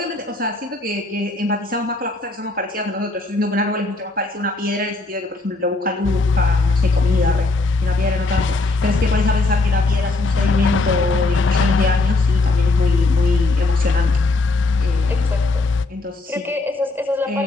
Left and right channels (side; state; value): right; quieter; 3.2 dB